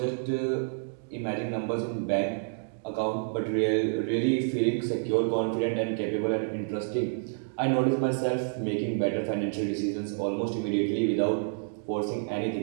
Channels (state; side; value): silent; left; digital silence